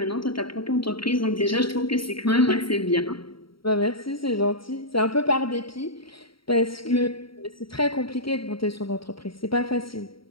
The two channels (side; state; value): right; late; 0.74 ms